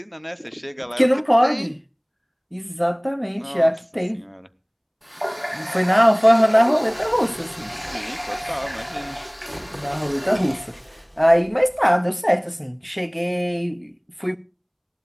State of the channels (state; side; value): identical; both; correlation 1.00